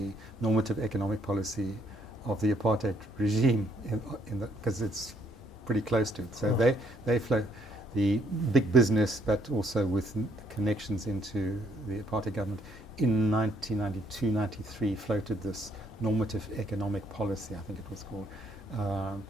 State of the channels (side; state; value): both; normal; correlation 0.67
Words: normative economic policy of the apartheid regime, because it's pretty close to it. So they flow the big business, but also with connections into the apartheid government. In 1992-93, floated this normative economic policy, I think it was called,